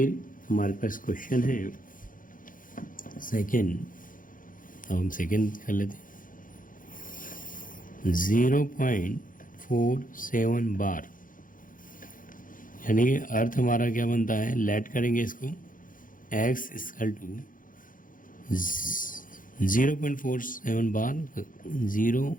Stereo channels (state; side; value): late; right; 0.39 ms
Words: हमारे पास क्वेश्चन है सेकेंड, अब हम सेकेंड कर लेते हैं। 0.47 बार यानी कि अर्थ हमारा क्या बनता है, लेट करेंगे इसको x equal to 0.47 bar